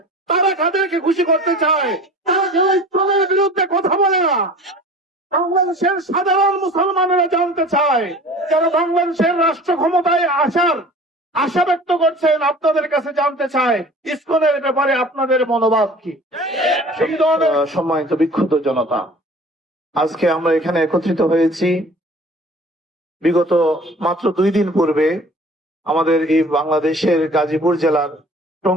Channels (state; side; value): normal; both; correlation 0.44